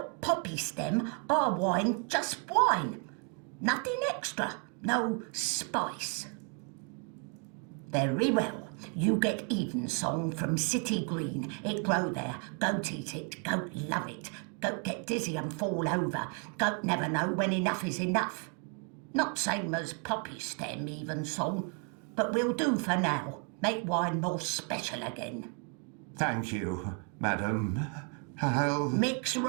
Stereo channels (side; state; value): left; quieter; 39.7 dB